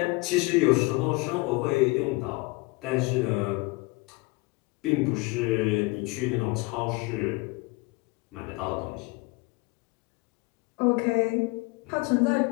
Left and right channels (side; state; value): right; quieter; 25.3 dB